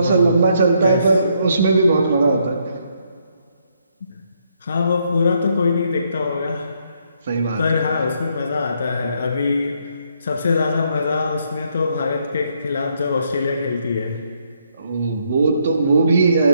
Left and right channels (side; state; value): both; inverted; correlation -0.73